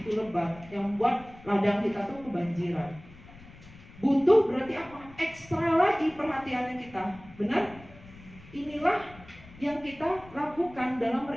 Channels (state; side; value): noise; left; rumble, 21 dB below the sound